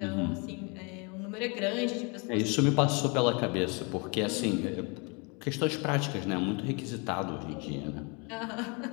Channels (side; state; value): right; quieter; 31.8 dB